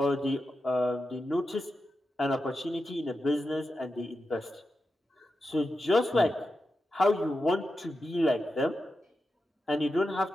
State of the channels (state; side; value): normal; both; correlation 0.89